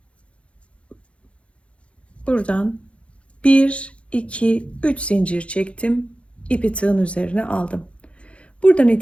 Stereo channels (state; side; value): late; right; 0.061 ms